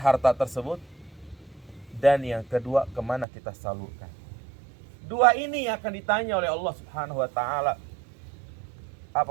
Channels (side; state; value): left; drops out; at 3.2 s